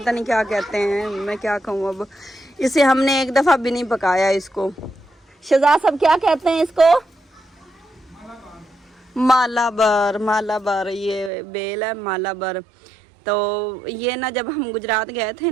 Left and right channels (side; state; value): left; drops out; at 11.3 s